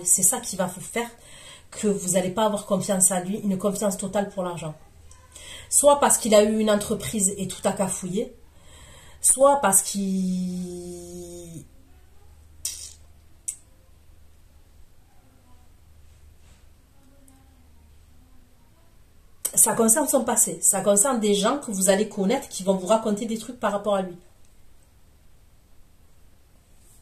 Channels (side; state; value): both; identical; correlation 1.00